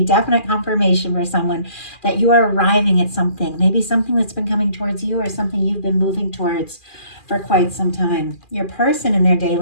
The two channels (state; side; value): late; right; 2.4 ms